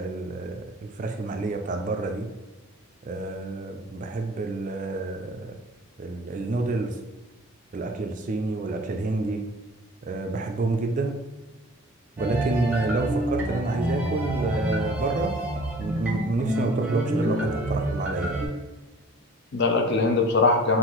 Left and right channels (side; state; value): both; normal; correlation 0.45